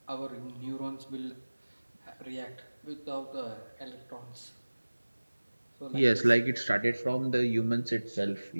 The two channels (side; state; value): both; inverted; correlation -1.00